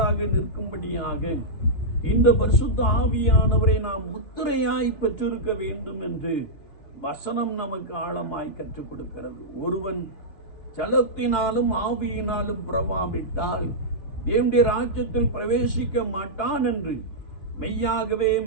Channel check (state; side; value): late; right; 3.5 ms